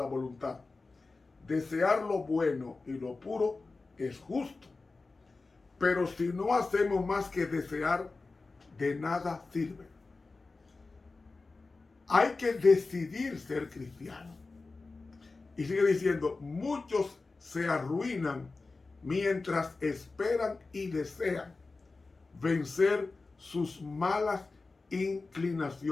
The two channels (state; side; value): quieter; right; 3.7 dB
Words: voluntad. Desear lo bueno y lo puro es justo. Pero si no hacemos más que desear, de nada sirve. Hay que decidir ser cristiano. Y sigue diciendo, muchos se arruinan mientras esperan y desean vencer sus malas